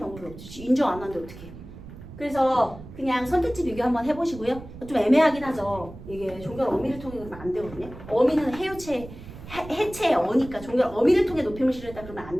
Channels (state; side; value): noise; right; rumble, 15 dB below the sound